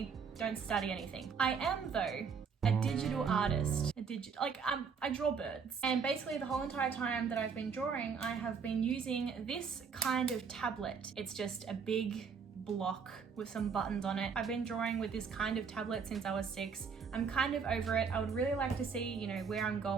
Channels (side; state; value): left; quieter; 5.9 dB